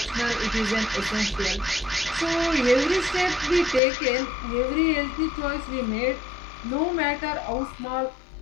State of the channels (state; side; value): drops out; right; at 3.8 s